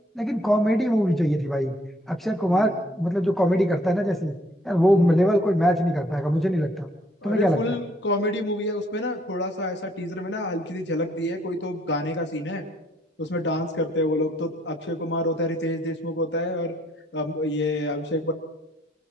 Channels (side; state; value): both; normal; correlation 0.66